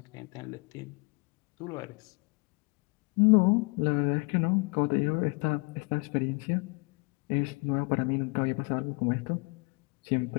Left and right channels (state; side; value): quieter; right; 30.2 dB